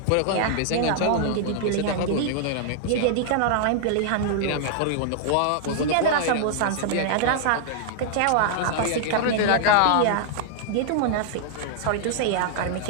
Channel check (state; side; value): different; both; correlation -0.01